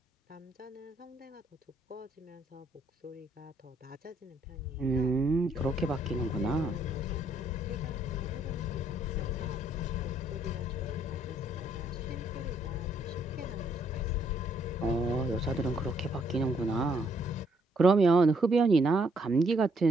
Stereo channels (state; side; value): normal; both; correlation 0.70